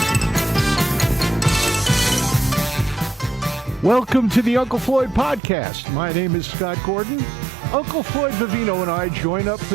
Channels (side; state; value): left; drops out; at 5.4 s